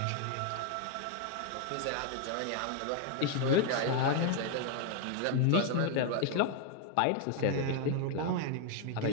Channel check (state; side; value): different; both; correlation 0.00